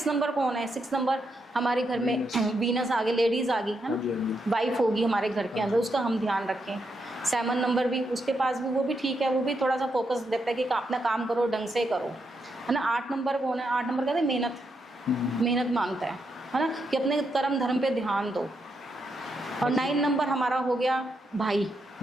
नंबर कौन है? 6 नंबर हमारे घर में वीनस आ गई, लेडीज आ गई, है हाँ जी, हाँ ना, जी। वाइफ होगी हमारे घर के अंदर, उसका हम ध्यान रखें। 7 नंबर भी उसके पास भी, वो भी ठीक है, वो भी थोड़ा सा फोकस देता है कि अपना काम करो, ढंग से करो, है ना। 8 नंबर कौन है? 8 नंबर कहते हैं मेहनत, मेहनत मांगता है ना, कि अपने कर्म धर्म पे ध्यान दो। और 9 नंबर हमारा हो गया भाई,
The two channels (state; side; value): normal; both; correlation 0.81